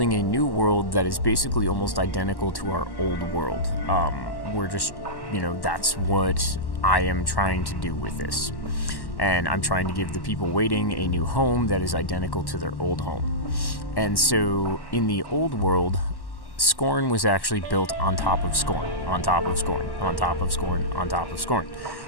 a new world that is basically almost identical to our old world. We're just that's what I am trying to do with this. And I'm trying to give the people waiting a new home that is identical to their old home. And so in the old world, Scorn was actually built on top of Scorn, on top of Scorn, on top of Scorn, on top of Scorn.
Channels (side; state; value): right; late; 1.1 ms